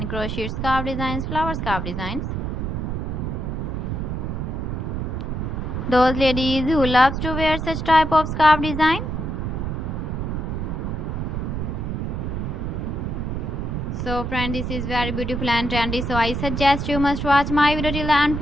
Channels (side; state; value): right; noise; rumble, 2 dB below the sound